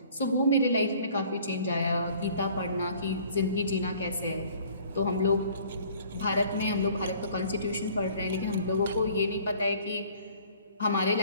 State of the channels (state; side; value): inverted; both; correlation -0.54